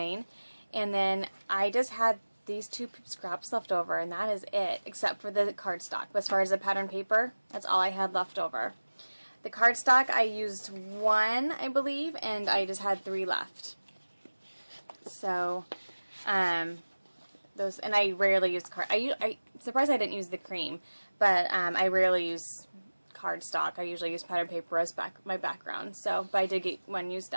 And then I just had these 2 scraps left over, and that is it, except for the cardstock. But as far as the pattern paper, that's all I had left over. The cardstock, I used 1, I believe, and I just had 3 left. So, those, and I rarely use I'm surprised I didn't use the cream, but I rarely use cardstock. I usually use pattern paper as my background. So, but I did get 1 used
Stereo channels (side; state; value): both; inverted; correlation -1.00